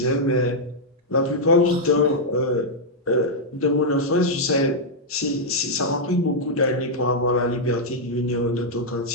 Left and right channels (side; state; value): both; normal; correlation -0.05